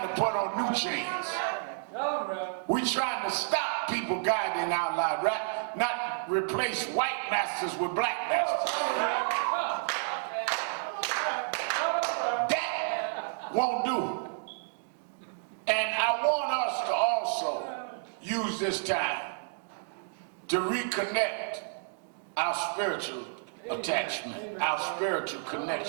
to put on new chains. We trying to stop people guiding our lives, right? Not replace white masters with black masters. That won't do. And I want us to also use this time to reconnect our spiritual attachment, our spiritual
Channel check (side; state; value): left; silent; digital silence